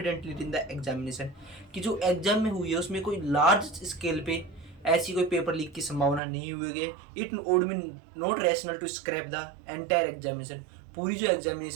in the examination, कि जो एग्जाम में हुई है उसमें कोई लार्ज स्केल पे ऐसी कोई पेपर लीक की संभावना नहीं हुई है। It would be not rational to scrap the entire examination, पूरी जो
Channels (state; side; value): drops out; left; at 6.2 s